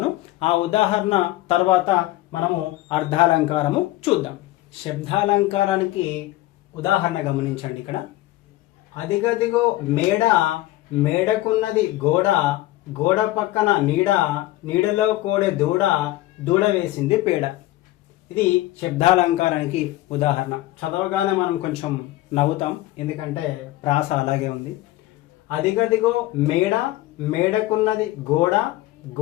ఆ ఉదాహరణ తర్వాత మనము అర్థాలంకారము చూద్దాం. శబ్దాలంకారానికి ఉదాహరణ గమనించండి. ఇక్కడ అదిగదిగో మేడ, మేడకున్నది గోడ, గోడ పక్కన నీడ, నీడలో కోడె దూడ, దూడ వేసింది పేడ. ఇది శబ్దాలంకారానికి ఉదాహరణ. చదవగానే మనం కొంచెం నవ్వుతాం, ఎందుకంటే ప్రాస అలాగే ఉంది. అదిగదిగో మేడ, మేడకున్నది గోడ,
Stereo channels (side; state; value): right; quieter; 16.8 dB